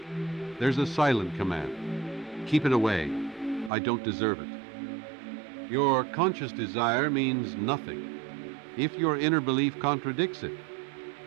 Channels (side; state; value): left; drops out; at 3.7 s